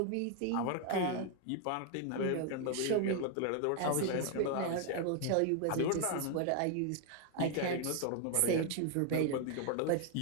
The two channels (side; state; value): both; different; correlation 0.00